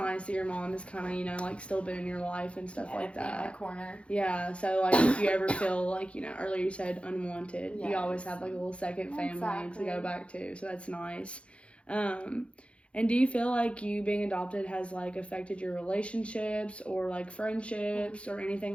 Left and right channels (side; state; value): right; late; 0.060 ms